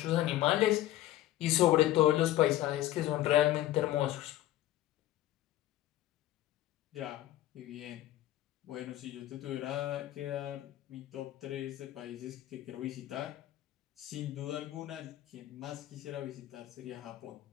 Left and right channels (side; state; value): right; quieter; 14.4 dB